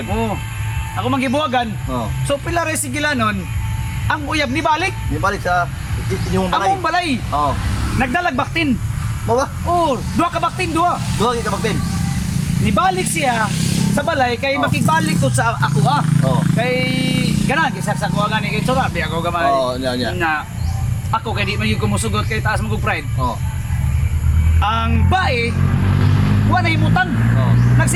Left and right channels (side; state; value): both; identical; correlation 1.00